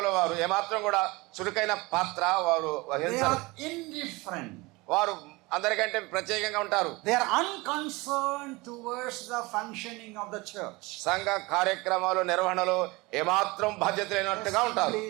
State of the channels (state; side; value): quieter; left; 23.4 dB